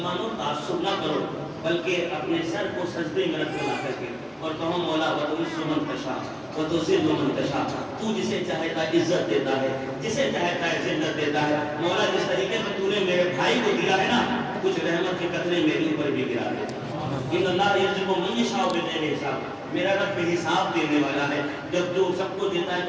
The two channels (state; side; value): identical; both; correlation 1.00